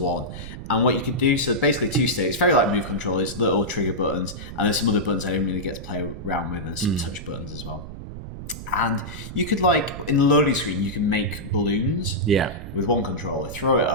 And what you could do, so basically 2 sticks, very like Move controllers, little trigger buttons, and there's some other buttons I didn't really get to play around with, and some touch buttons as well. And you could in the loading screen, you can make balloons with one controller, throw it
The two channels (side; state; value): right; noise; rumble, 11 dB below the sound